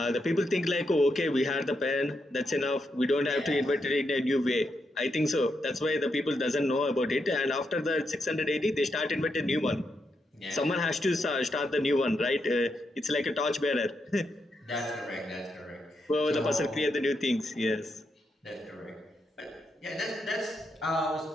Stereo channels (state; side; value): normal; both; correlation 0.82